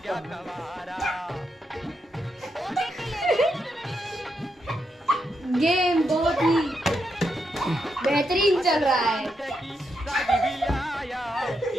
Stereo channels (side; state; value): both; normal; correlation 0.82